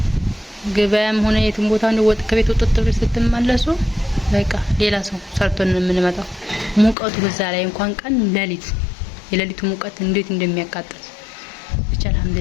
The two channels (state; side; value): drops out; right; at 7.0 s